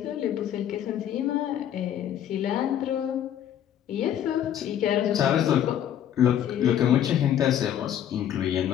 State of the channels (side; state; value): right; quieter; 10.3 dB